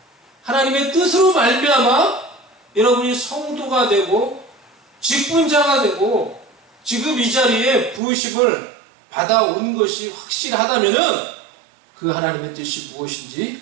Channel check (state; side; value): drops out; left; at 8.0 s